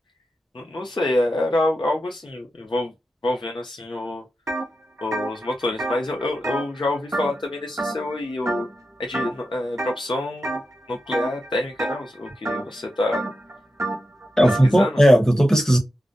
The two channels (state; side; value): normal; both; correlation 0.89